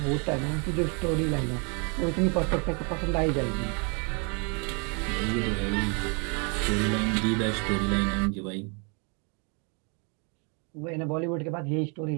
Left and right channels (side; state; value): left; quieter; 35.3 dB